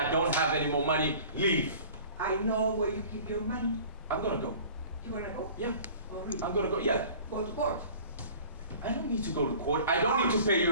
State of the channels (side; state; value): both; inverted; correlation -0.45